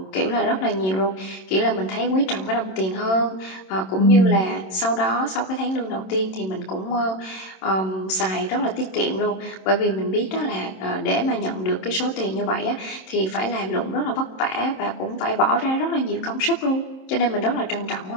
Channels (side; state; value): right; late; 27 ms